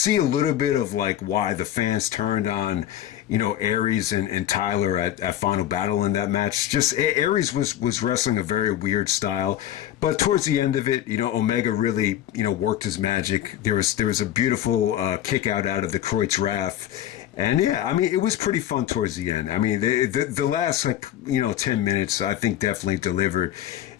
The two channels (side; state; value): right; quieter; 12.1 dB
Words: a little bit of like why the fans turned on, Aries and Tyler at Final Battle in that match. Just Aries was wrestling a very weird style, but towards the end of it, Omega really, worked his magic. There was a beautiful kick out of the Kreutz Wrath. And yeah, I mean, it was pretty fun towards the end. I mean, the last 10 minutes, I think definitely delivered.